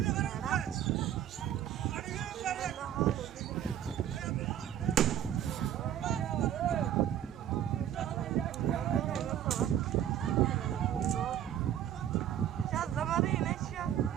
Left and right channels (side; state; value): left; quieter; 10.6 dB